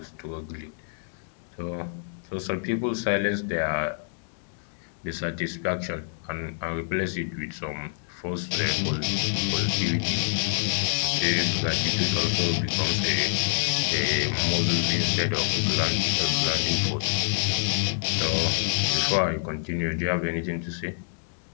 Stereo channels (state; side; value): silent; right; digital silence